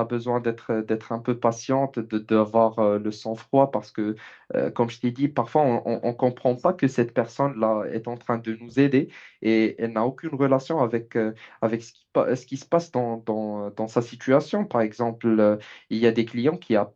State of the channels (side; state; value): both; identical; correlation 1.00